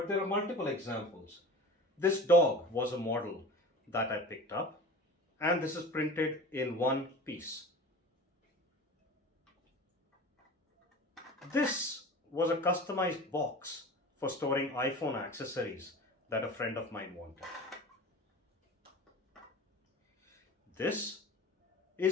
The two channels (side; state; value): both; normal; correlation 0.36